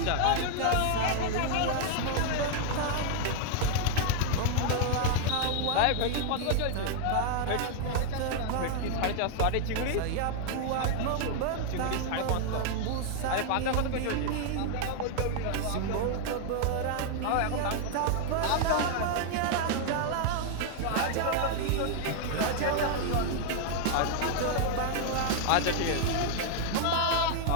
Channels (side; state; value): both; different; correlation 0.00